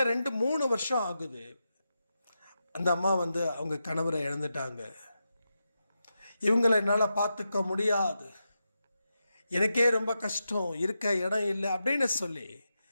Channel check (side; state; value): both; inverted; correlation -0.88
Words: 2-3 வருஷம் ஆகுது. அந்த அம்மா அவங்க கணவரை இழந்துட்டாங்க. இவங்களை என்னால் பார்த்துக்க முடியாது, எனக்கே ரொம்ப கஷ்டம், இருக்க இடம் இல்லை அப்படின்னு சொல்லி